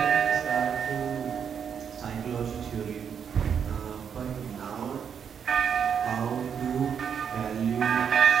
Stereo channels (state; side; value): quieter; left; 7.5 dB